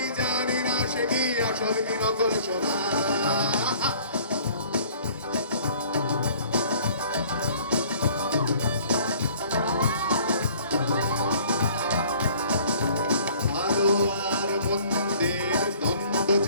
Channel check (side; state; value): both; inverted; correlation -0.53